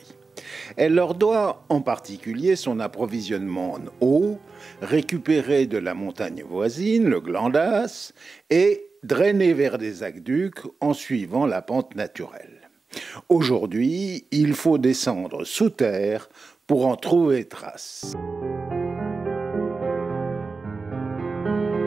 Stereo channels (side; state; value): left; quieter; 4.2 dB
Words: Elle leur doit en particulier son approvisionnement en eau, récupéré de la montagne voisine, le Glandas, et drainé vers des aqueducs en suivant la pente naturelle. Aujourd'hui, il faut descendre sous terre pour en trouver trace.